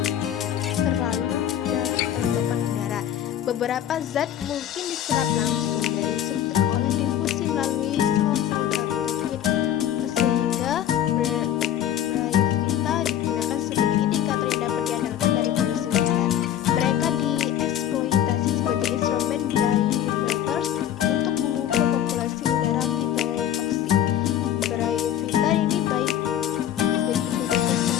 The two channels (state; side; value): quieter; right; 10.8 dB